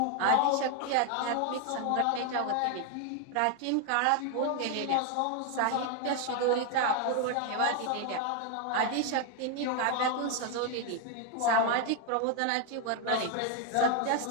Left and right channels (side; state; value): both; different; correlation 0.01